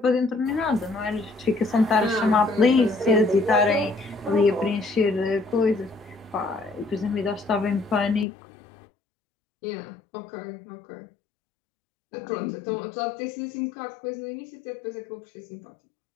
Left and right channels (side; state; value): right; drops out; at 8.2 s